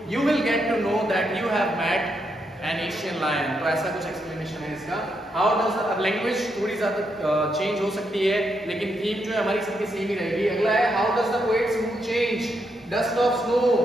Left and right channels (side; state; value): both; normal; correlation 0.80